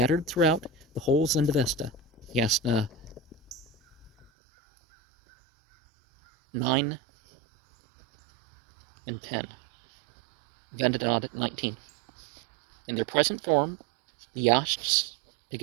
throughout the whole Zendavesta. Yasna 9 and 10. Vendidad 19. In their present form, the Yashts,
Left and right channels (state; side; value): drops out; left; at 4.3 s